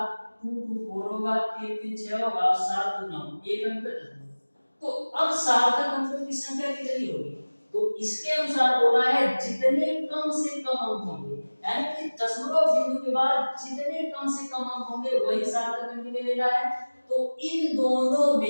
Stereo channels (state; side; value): inverted; both; correlation -1.00